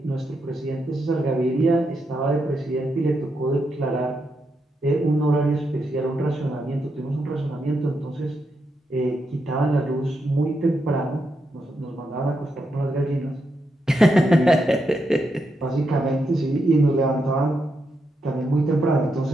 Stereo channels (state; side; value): normal; both; correlation 0.83